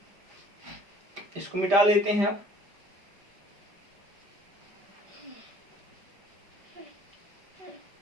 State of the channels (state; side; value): late; left; 5.0 ms